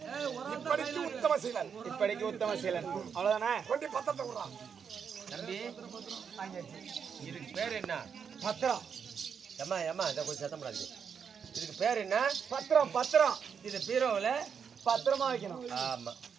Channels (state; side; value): quieter; left; 6.8 dB